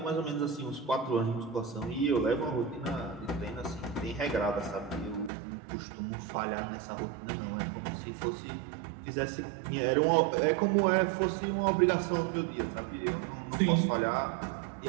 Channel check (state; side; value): drops out; left; at 5.3 s